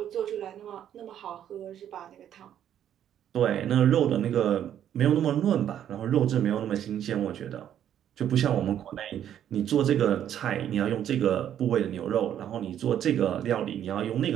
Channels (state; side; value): quieter; left; 10.2 dB